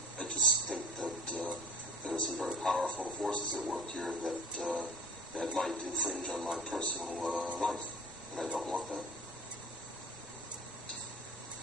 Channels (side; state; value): both; normal; correlation 0.45